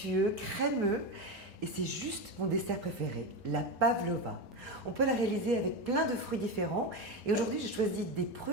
crémeux. Et c'est juste mon dessert préféré, la pavlova. On peut la réaliser avec plein de fruits différents. Et aujourd'hui, j'ai choisi des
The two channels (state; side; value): normal; both; correlation 0.16